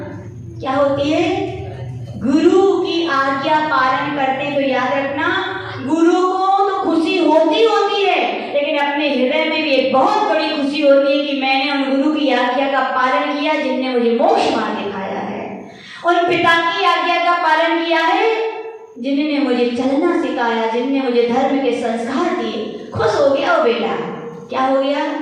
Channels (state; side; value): identical; both; correlation 1.00